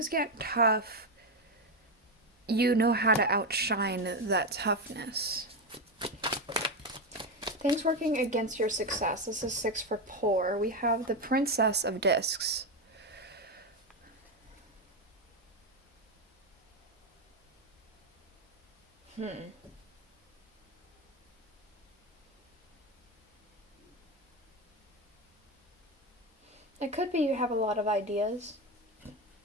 get tough, you know how to outshine that toughness. Things working against your success. This is 6 for poor. We have the Princess of Discs. It could be you have a lot of ideas.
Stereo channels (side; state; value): both; normal; correlation 0.11